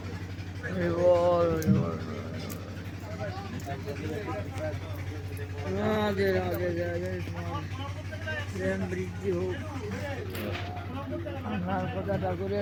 রাধে রাধে রাধে প্রেম বৃদ্ধি হোক। আপনার কথাটা করে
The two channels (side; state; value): both; identical; correlation 1.00